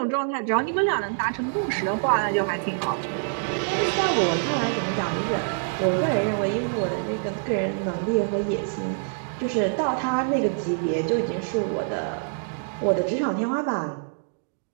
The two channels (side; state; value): left; silent; digital silence